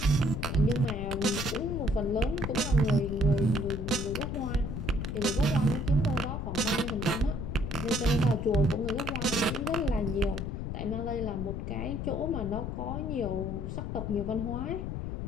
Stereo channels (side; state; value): left; noise; rumble, 4 dB below the sound